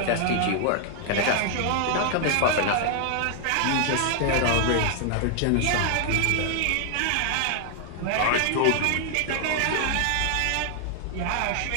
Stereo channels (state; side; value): different; both; correlation 0.00